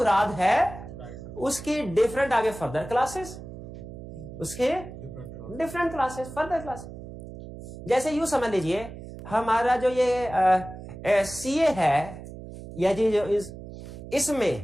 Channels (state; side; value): noise; right; hum, 13 dB below the sound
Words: है उसकी डिफरेंट, आगे फर्दर क्लासेस, उसके डिफरेंट क्लासेस, फर्दर क्लासेस। जैसे यूं समझ लीजिए, हमारा जो ये सीए है, या जी जो